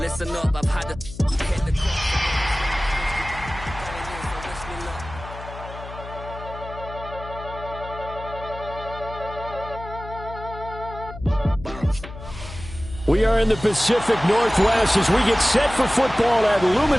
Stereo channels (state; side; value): noise; left; hum, 13 dB below the sound